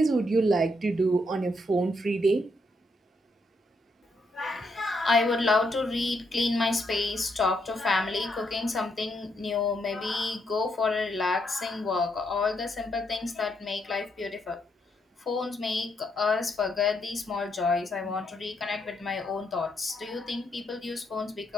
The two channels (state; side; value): normal; both; correlation 0.77